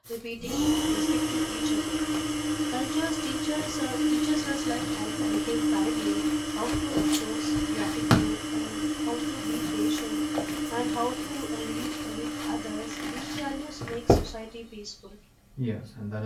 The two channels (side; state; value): both; identical; correlation 1.00